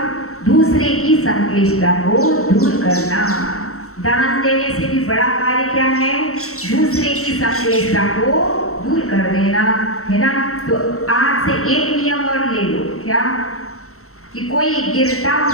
दूसरे की संक्लेशता को दूर करना। दान देने से भी बड़ा कार्य क्या है? दूसरे की संक्लेशता को दूर कर देना, है ना। तो आज से एक नियम और ले लो, क्या? कि कोई गिरता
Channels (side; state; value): right; late; 0.63 ms